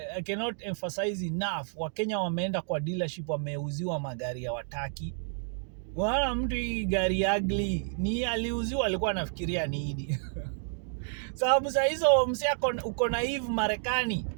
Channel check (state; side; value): silent; left; digital silence